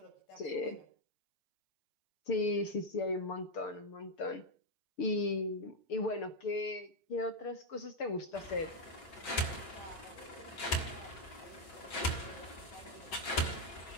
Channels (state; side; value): late; right; 6.7 ms